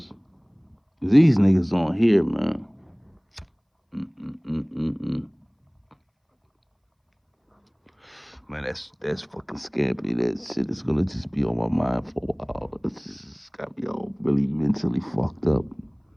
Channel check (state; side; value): identical; both; correlation 1.00